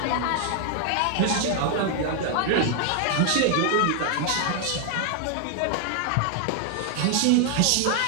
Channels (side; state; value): both; different; correlation 0.00